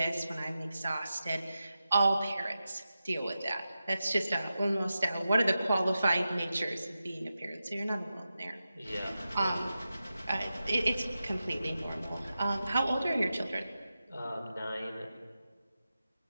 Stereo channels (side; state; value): both; inverted; correlation -0.92